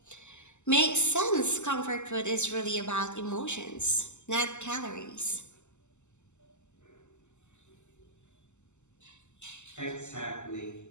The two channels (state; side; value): late; right; 0.83 ms